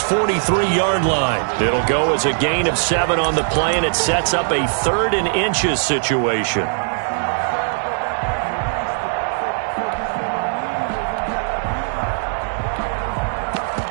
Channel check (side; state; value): left; silent; 63 dB below the other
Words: line. It'll go as a gain of 7 on the play, and it sets up a 3rd and inches situation.